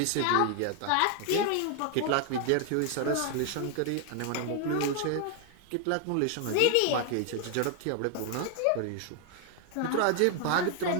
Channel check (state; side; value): different; both; correlation 0.00